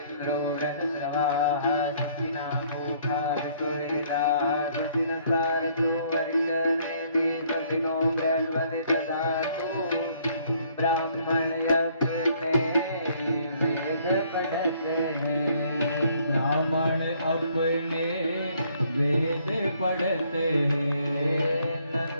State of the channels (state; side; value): inverted; both; correlation -0.64